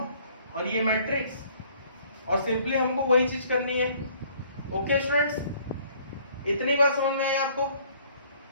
और ये मैट्रिक्स, और सिंपली हमको वही चीज करनी है. ओके स्टूडेंट्स, इतनी बात समझ में आई आपको?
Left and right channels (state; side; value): inverted; both; correlation -0.59